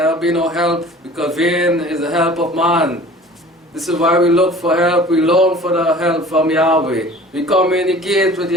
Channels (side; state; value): both; normal; correlation 0.45